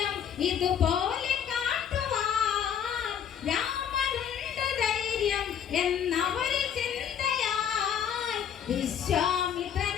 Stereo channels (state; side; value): quieter; right; 8.5 dB